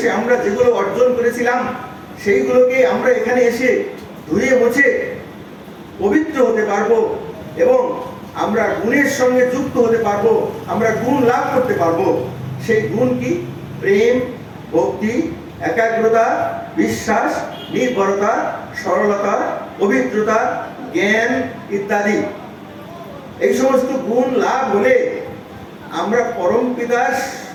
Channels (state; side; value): identical; both; correlation 1.00